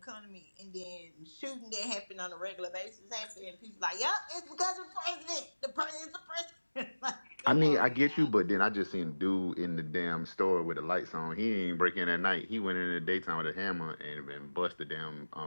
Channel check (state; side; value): inverted; both; correlation -1.00